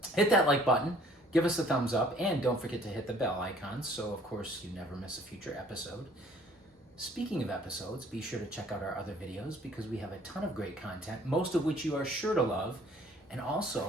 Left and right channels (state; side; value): normal; both; correlation 0.56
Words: Hit that like button, give us a thumbs up, and don't forget to hit the bell icon so of course you never miss a future episode. Speaking of episodes, be sure to check out our other videos because we have a ton of great content, most of which you are sure to love. And